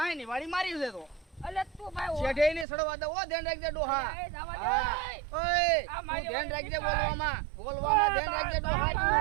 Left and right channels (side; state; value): left; drops out; at 2.7 s